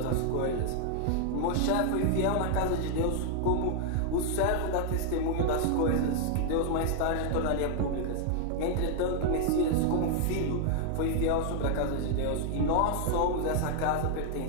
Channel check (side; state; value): both; different; correlation 0.00